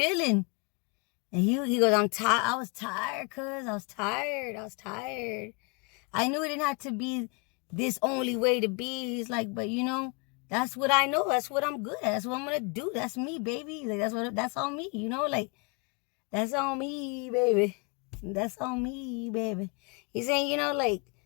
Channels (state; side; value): quieter; right; 31.6 dB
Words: And he goes, I'm tired. I was tired, cuz. I was tired. I knew it didn't have to be this only way to be. He's like, but you know, that's what I know. That's what I'm good at. That's what I'm going to do. That's me, baby. Like, that's on me, you know? Like, that's on me, baby. That's on me, baby. He's saying, you know, like,